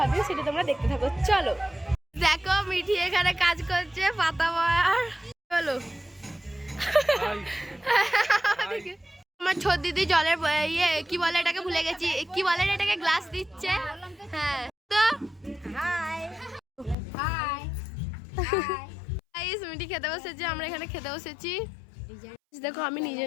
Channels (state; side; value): drops out; right; at 16.9 s